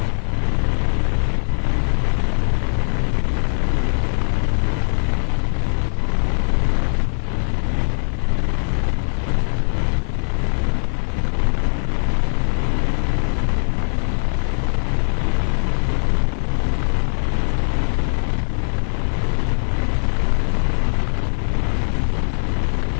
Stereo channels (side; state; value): right; silent; 66 dB below the other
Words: என் குடும்பம் மட்டும் ஆசீர்வாதமா இருக்கணும். ஆமென். என்ன அவங்களுக்கு என்ன சோத்துல நான் எதை எடுத்து போட்டேன்னா தெரியல. அருமையானவர்களே, யோசித்து பாருங்க, இந்த வருஷம் முழுவதும் நம்முடைய குடும்பத்தை கண்ணின் மணி போல பாதுகாத்தார்.